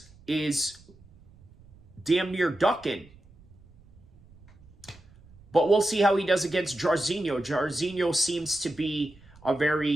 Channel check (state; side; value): noise; right; rumble, 25 dB below the sound